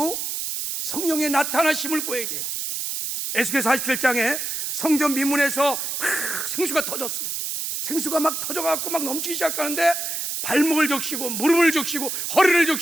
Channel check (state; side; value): noise; right; hiss, 3 dB below the sound